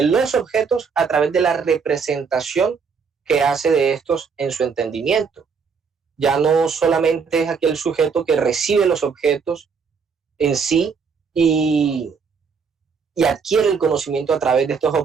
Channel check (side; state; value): left; quieter; 5.7 dB